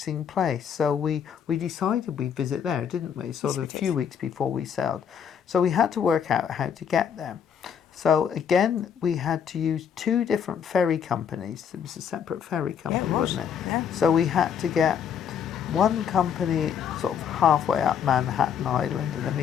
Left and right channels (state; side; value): quieter; right; 7.9 dB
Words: place. So we decided we'd visit there, didn't we? Sort of a few weeks before we sailed. So we had to work out how to get there. So again, we had to use 2 different ferry companies. It was a separate ferry company, wasn't it? Yeah. So we had to get one company sort of halfway up Manhattan Island, and then we